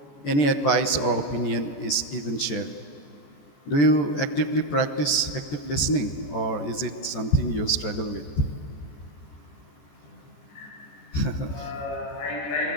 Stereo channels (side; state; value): right; late; 14 ms